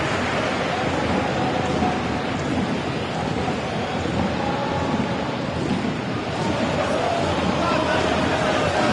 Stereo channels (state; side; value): identical; both; correlation 1.00